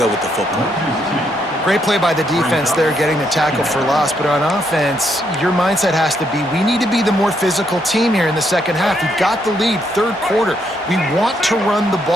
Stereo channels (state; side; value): normal; both; correlation 0.75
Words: with the football. Great play by the defense there, getting the tackle for loss. But on offense, your mindset has to be, we need to be the more physical team here in the second half. We've got the lead, 3rd quarter. We want to run the